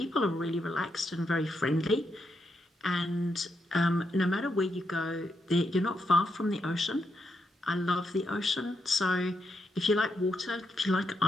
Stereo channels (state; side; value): normal; both; correlation 0.81